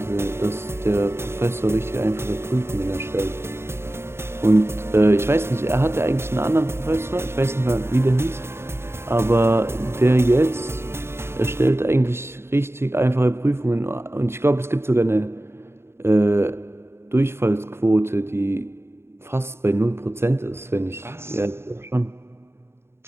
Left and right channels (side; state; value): left; late; 0.12 ms